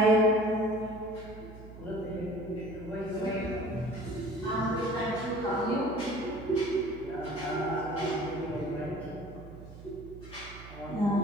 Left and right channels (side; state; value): right; noise; hum, 15 dB below the sound